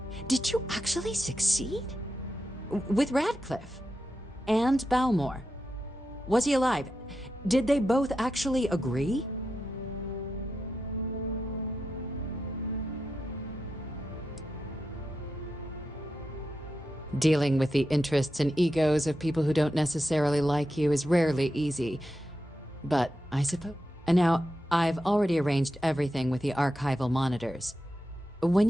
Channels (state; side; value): normal; both; correlation 0.88